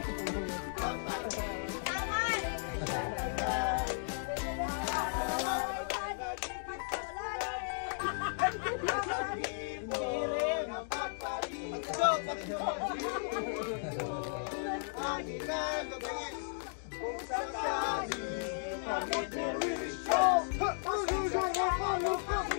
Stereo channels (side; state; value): right; silent; digital silence